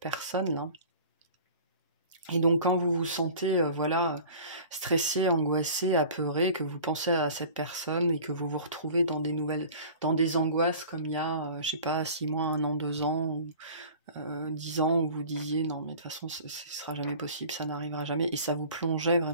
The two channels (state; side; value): inverted; both; correlation -0.43